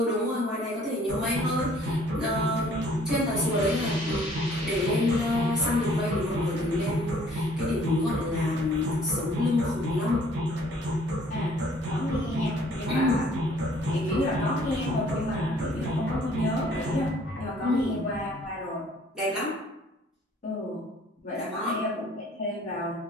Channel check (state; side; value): normal; both; correlation 0.57